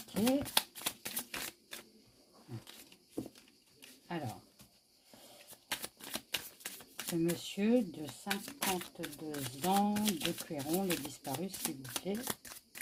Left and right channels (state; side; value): identical; both; correlation 1.00